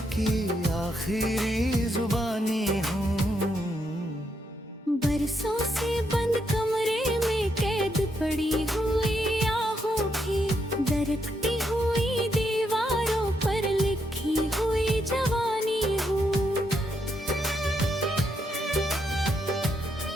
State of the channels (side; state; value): both; normal; correlation 0.79